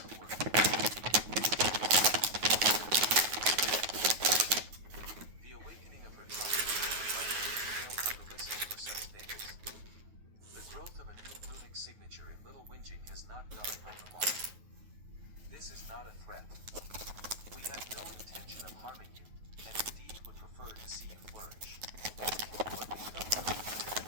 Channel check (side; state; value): left; late; 9.3 ms